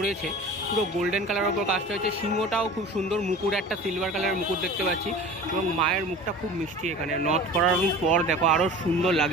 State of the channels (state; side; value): normal; both; correlation 0.39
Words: পুরো গোল্ডেন কালারের ওপর কাজটা হয়েছে। সিংহটাও খুব সুন্দর, মুকুট একটা সিলভার কালারের মুকুট দেখতে পাচ্ছি এবং মায়ের মুখটা খুব মিষ্টি। এখানে নর্থ করার পর দেখো আরও সুন্দর